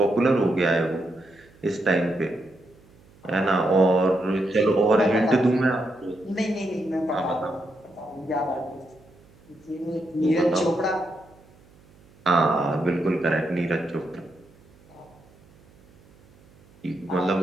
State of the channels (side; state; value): right; noise; hum, 28 dB below the sound